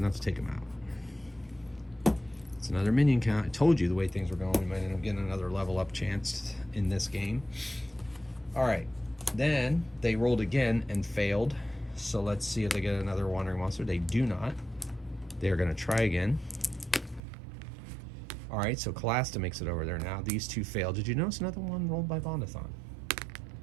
to take him out. It's another minion count. I told you the way things were going, we might end up getting another level up chance in this game. All right. Then they rolled again and failed. So let's see if they get another wandering monster. They do not. They're going to try again. All right, so Calasta makes it over there now. These 2 failed. Did you notice another one rolled by Bondorthon?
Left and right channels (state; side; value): drops out; left; at 17.2 s